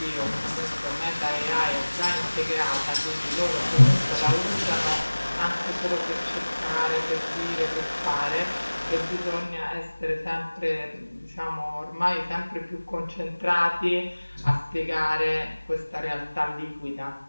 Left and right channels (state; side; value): inverted; both; correlation -1.00